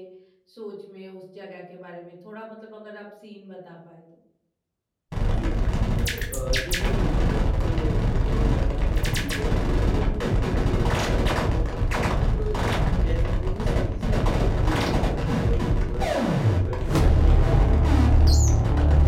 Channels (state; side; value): identical; both; correlation 1.00